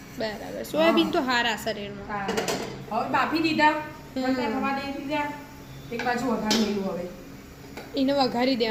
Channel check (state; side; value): identical; both; correlation 1.00